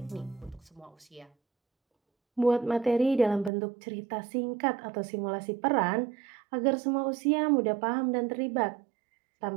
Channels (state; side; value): drops out; left; at 3.5 s